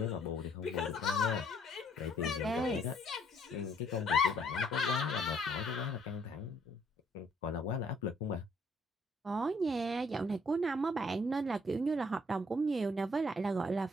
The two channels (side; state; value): both; normal; correlation 0.64